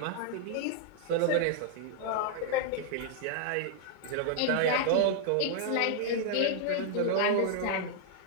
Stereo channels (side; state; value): both; different; correlation 0.00